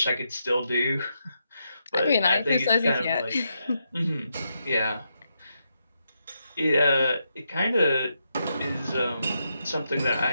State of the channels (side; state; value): both; inverted; correlation -0.83